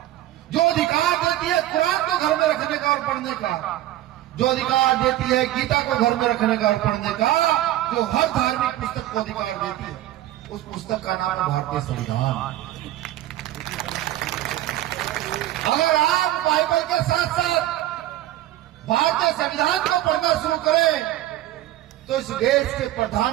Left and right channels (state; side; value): quieter; left; 14.4 dB